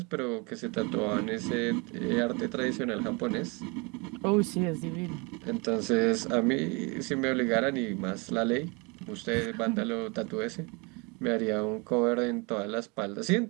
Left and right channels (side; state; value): left; quieter; 29.5 dB